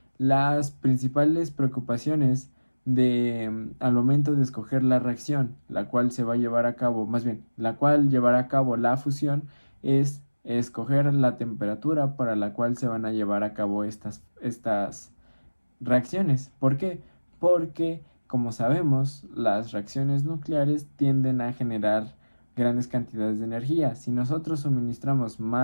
las principales preocupaciones al momento de escoger la reacción, la cual se va a llevar a cabo, más bien, la cual llevará a cabo la fusión, es escoger la temperatura para la cual se van a llevar a cabo estas reacciones. ¿Por qué? Porque, como sabemos, las reacciones nucleares tienden a generar grandes cantidades de energía. Si nosotros suministramos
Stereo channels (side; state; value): both; inverted; correlation -1.00